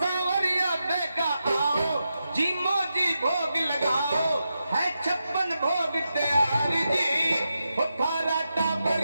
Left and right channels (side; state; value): both; inverted; correlation -0.88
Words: भोग तैयार जी थारा